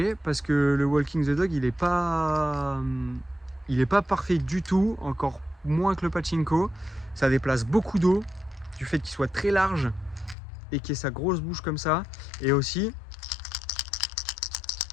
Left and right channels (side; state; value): right; drops out; at 10.4 s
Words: parce que le Walking the Dog il est pas parfait du tout, encore moins que le pachinko. Ça déplace beaucoup d'eau du fait qu'il soit très large et qu'il ait sa grosse bouche comme ça. Et aussi